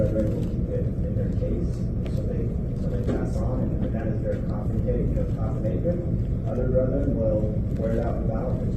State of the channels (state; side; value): identical; both; correlation 1.00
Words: will keep it in their case so they pass on, and that is their coffin apron. Other brethren will wear it out without, but